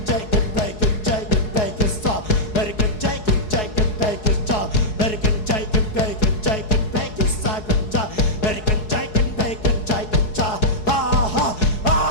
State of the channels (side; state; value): right; late; 4.7 ms